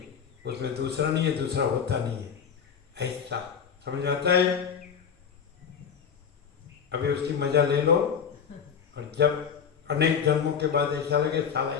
उसमें दूसरा नहीं है, दूसरा होता नहीं है, ऐसा समझ आता है। अभी उसकी मजा ले लो, और जब अनेक जन्मों के बाद ऐसा लगे साला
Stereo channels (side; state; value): right; quieter; 7.1 dB